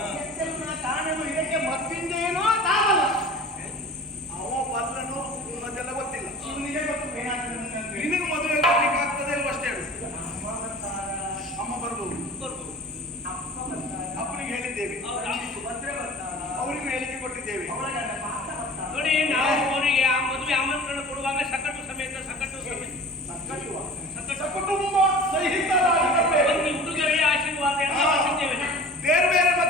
ಕಾಣಲು ಇದಕ್ಕೆ ಮತ್ತಿಂದೇನೋ ತಾವಲ್ಲ. ಅವ ಬಲ್ಲನು ಅದೆಲ್ಲ ಗೊತ್ತಿಲ್ಲ. ಇವನಿಗೆ ಗೊತ್ತು ಏನಾಗ್ತದೆ. ನಿನಗೆ ಮದುವೆ ಮಾಡ್ಲಿಕ್ಕೆ ಆಗ್ತದೆ ಅಲ್ವ ಅಷ್ಟೇ ಹೇಳು. ಅಮ್ಮ ಬರ್ಬೋದು, ಅಪ್ಪನಿಗೆ ಹೇಳಿದ್ದೇವೆ, ಅವರಿಗೂ ಹೇಳಿಕೆ ಕೊಟ್ಟಿದ್ದೇವೆ. ನೋಡಿ, ನಾವು ಅವರಿಗೆ ಆ ಮದುವೆ ಆಮಂತ್ರಣ ಕೊಡುವಾಗ ಸಕಟು ಸಮೇತ ಕುಟುಂಬ ಸಹಿತರಾಗಿ ಒಂದು ಹುಡುಗರಿಗೆ ಆಶೀರ್ವಾದ ಎಲ್ಲ ಮಾಡಿದ್ದೇವೆ. ಬೇರೆ ಬೇರೆ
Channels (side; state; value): both; normal; correlation 0.40